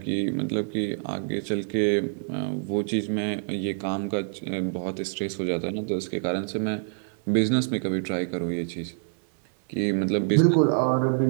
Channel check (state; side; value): silent; left; 61 dB below the other